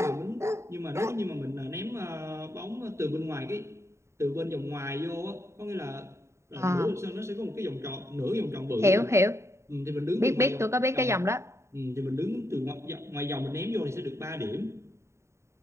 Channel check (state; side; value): late; left; 0.14 ms